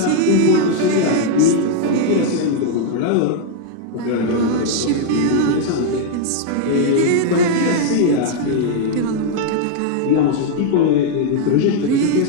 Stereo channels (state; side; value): different; both; correlation 0.00